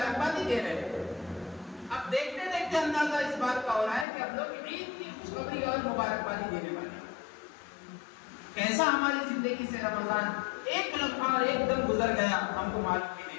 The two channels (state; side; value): drops out; right; at 4.0 s